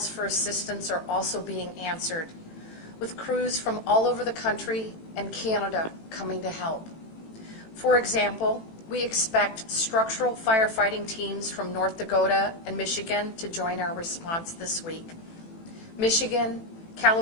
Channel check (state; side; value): late; right; 18 ms